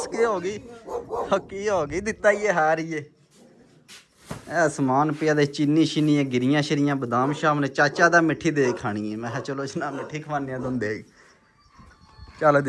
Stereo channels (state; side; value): identical; both; correlation 1.00